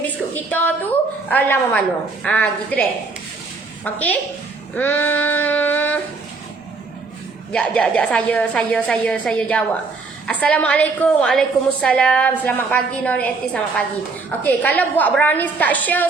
kita tu lama mana. Gitu deh. Okey. Saya jawab. Assalamualaikum. Waalaikumsalam. Selamat pagi Nori Eti, selamat pagi. Okey, kalau buat brownies tak share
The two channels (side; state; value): left; quieter; 4.1 dB